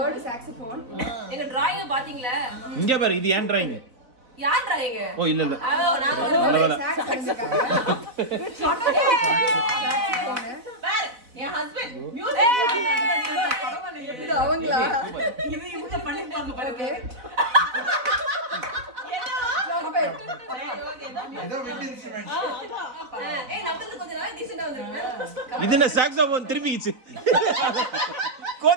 saxophone. எங்க drawing பாத்தீங்களா? இங்க பாரு இது ஏன் drawing? யார் drawing? ஓ இல்ல இல்ல. நான் ஒரு sax அடிச்சுக்காங்க. பாரு என் ஹஸ்பண்ட் மியூசிக் பரவாயில்லை இது அவங்களா? இது இவங்க பண்ணிருப்பாங்க பாருங்க. இது என்ன சாக்ஸோபோன் திரும்பிச்சு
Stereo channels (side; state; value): left; late; 4.0 ms